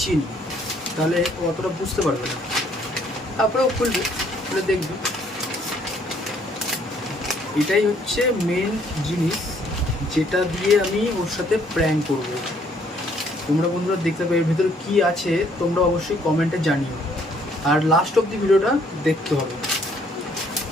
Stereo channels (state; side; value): normal; both; correlation 0.65